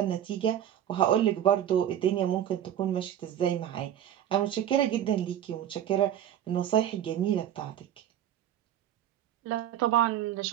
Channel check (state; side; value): quieter; left; 10.8 dB